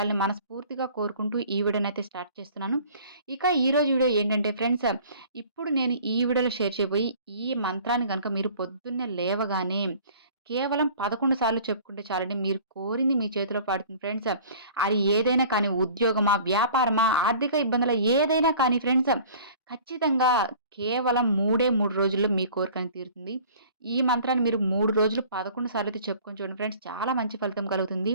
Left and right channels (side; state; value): both; inverted; correlation -0.48